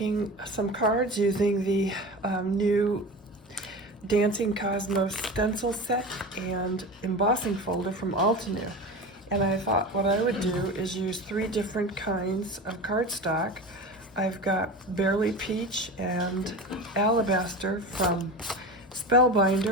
some cards using the new Dancing Cosmos stencil set and embossing folder from Altenew. And I thought what I would do is use 3 different kinds of cardstock. I've got Barely Peach and Alabaster from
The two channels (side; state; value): both; normal; correlation 0.30